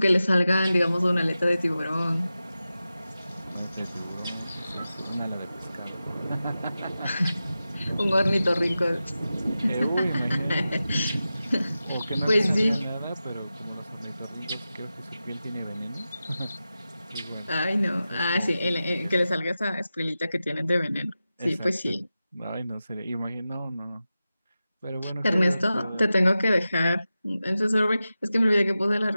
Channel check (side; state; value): both; inverted; correlation -0.93